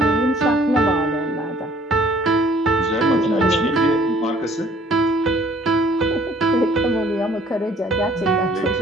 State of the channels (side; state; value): both; normal; correlation 0.58